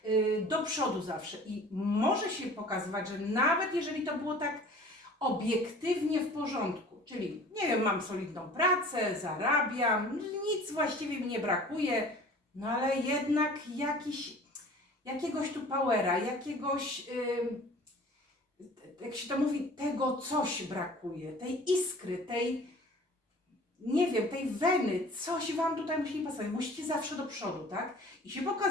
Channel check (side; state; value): both; normal; correlation 0.46